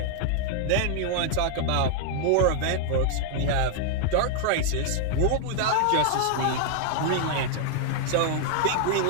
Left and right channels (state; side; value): different; both; correlation 0.00